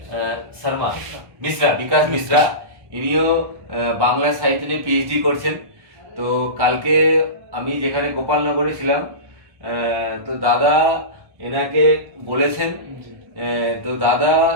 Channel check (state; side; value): late; left; 1.3 ms